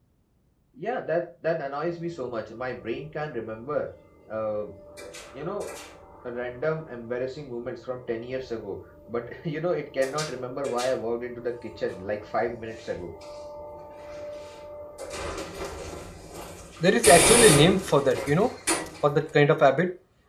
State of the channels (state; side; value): identical; both; correlation 1.00